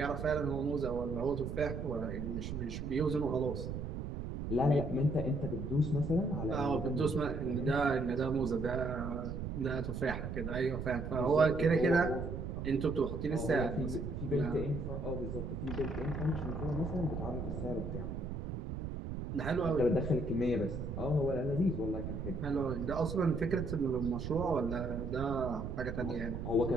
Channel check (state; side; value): noise; right; rumble, 5 dB below the sound